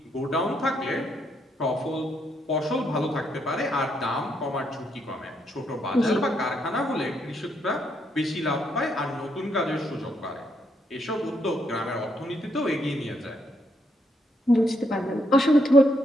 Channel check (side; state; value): both; normal; correlation 0.75